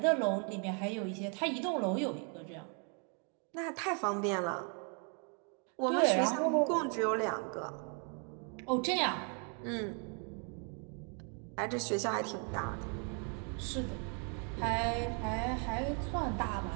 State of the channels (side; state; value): left; quieter; 38.9 dB